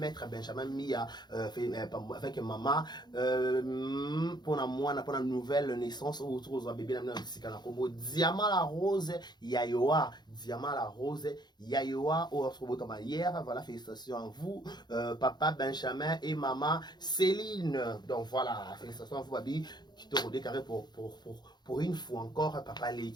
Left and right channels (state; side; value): late; right; 0.21 ms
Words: Benjamin Mia, avec maman, pour la nouvelle naissance, autour de bébé, Diamant la rose, Yayoa, Diamant la rose, Yayoa, hier, voilà, félicitations à vous, papa Benjamin et maman Céline. Donc voilà, félicitations à vous, Babi, qui te redécaré pour une fois encore, papa